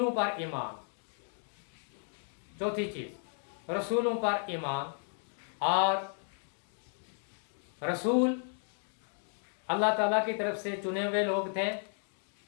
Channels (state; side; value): silent; right; 55 dB below the other